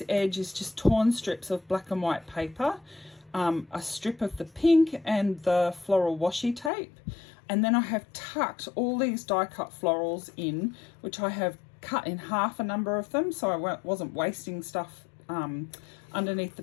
edge is just torn strips of black and white paper, a strip of the pink and the floral washi tape. And then I have tucked all these die cut florals in, which I have cut in half a number of them, so I wasn't wasting stuff underneath the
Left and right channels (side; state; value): right; drops out; at 6.7 s